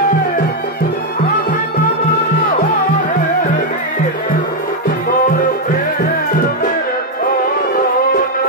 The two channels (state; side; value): normal; both; correlation 0.01